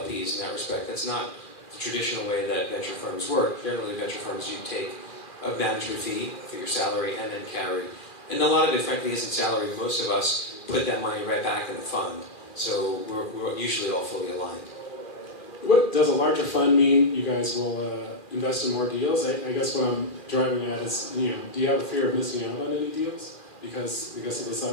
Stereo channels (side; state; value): right; late; 2.4 ms